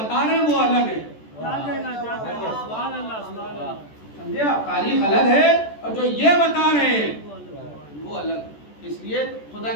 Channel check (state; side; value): late; right; 14 ms